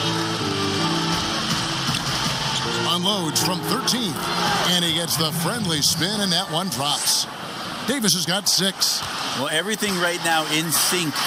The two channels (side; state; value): both; identical; correlation 1.00